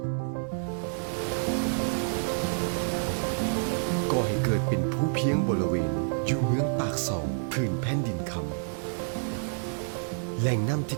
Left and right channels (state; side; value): silent; left; 59 dB below the other